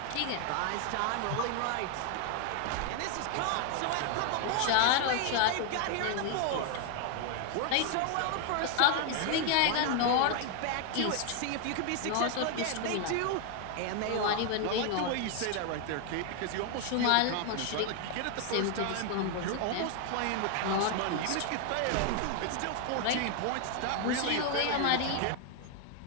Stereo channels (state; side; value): different; both; correlation 0.00